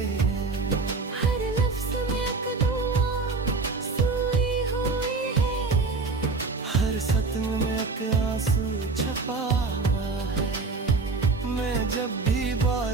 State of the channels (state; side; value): quieter; left; 4.1 dB